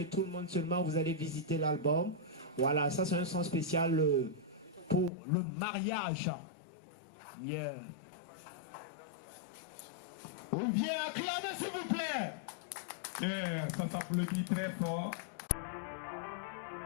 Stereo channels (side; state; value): right; drops out; at 5.1 s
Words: Tout le Monde seulement, vous allez visiter l'album. Voilà, ça c'est un son spécial pour le mariage. Yeah. On vient acclamer s'il vous plaît. Yeah, ça s'applaudit très fort.